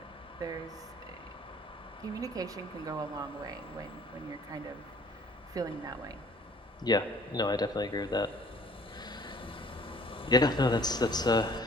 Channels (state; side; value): normal; both; correlation 0.55